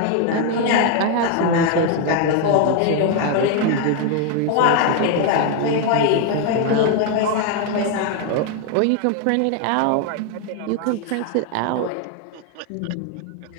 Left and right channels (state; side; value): different; both; correlation 0.01